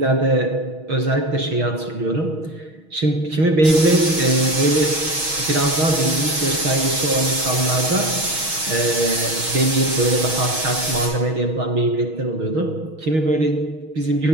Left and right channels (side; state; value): left; late; 6.3 ms